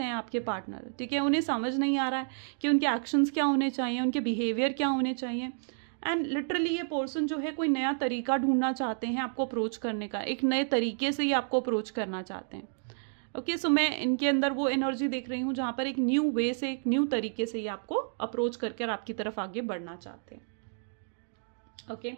आपके पार्टनर, ठीक है। उन्हें समझ नहीं आ रहा है कि उनके एक्शंस क्या होने चाहिए, उनके बिहेवियर क्या होने चाहिए। एंड लिटरली ये पर्सन जो है कोई नया तरीका ढूंढना चाहते हैं आपको अप्रोच करने का, एक नए तरीके से ही आपको अप्रोच करना चाहते हैं, ओके। सो मैं इनके अंदर वो एनर्जी देख रही हूँ जहाँ पर एक न्यू वे से, एक न्यू तरीके से ही आपको अप्रोच करके आपकी तरफ आगे बढ़ना चाहते हैं, okay.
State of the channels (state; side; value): silent; left; digital silence